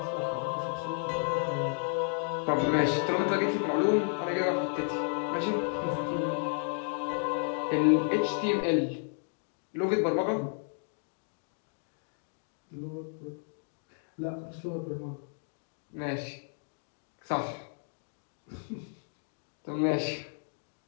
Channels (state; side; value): silent; right; 56 dB below the other